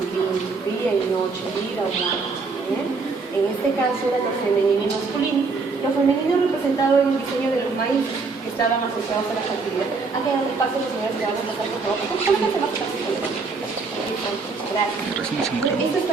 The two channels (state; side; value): quieter; left; 4.4 dB